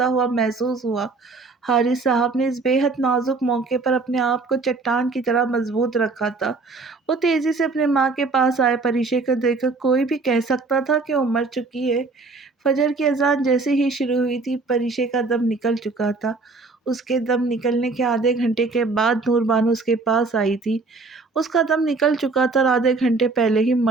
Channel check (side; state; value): left; quieter; 3.9 dB